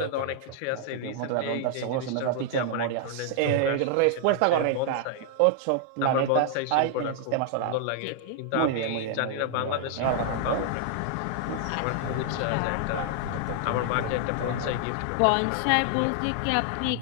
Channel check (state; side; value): different; both; correlation 0.00